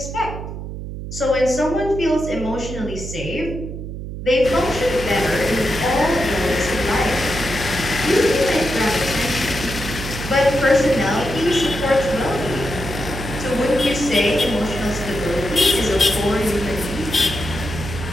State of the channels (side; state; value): right; noise; hum, 8 dB below the sound